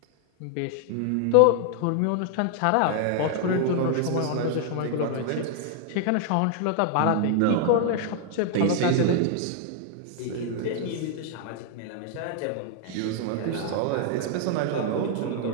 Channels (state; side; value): different; both; correlation 0.00